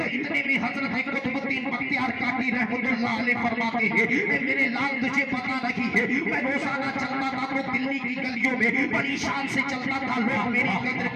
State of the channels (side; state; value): both; identical; correlation 1.00